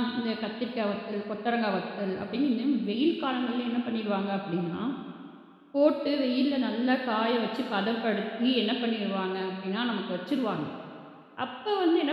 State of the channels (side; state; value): both; identical; correlation 1.00